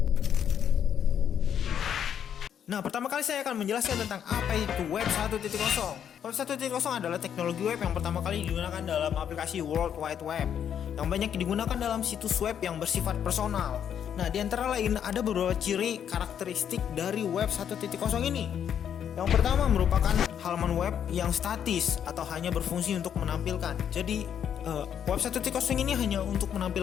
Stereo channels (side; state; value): right; quieter; 8.8 dB